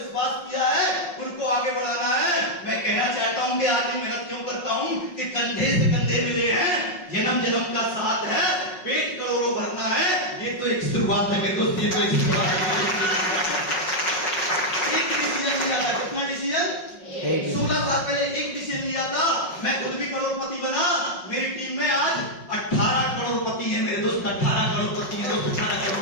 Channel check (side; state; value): right; late; 5.4 ms